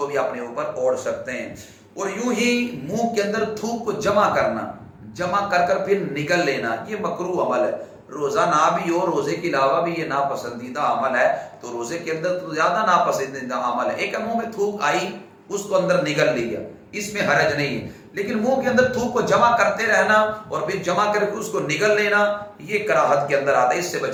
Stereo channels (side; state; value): both; identical; correlation 1.00